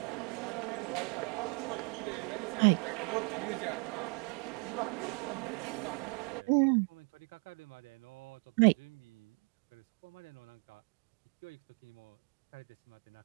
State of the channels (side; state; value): left; quieter; 34.1 dB